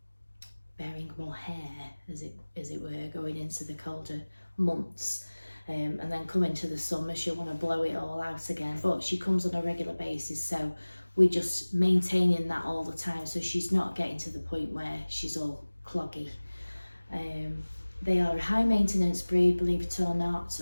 bearing more hair, as it were, going into the colder months. And then coming to the summer, she'll want to blow it all out again. But she comes on a regular basis, so we're just maintaining that all the time, so she's not getting to the point where she's all cloggy. They are a high maintenance breed, believe it or not.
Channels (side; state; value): both; inverted; correlation -1.00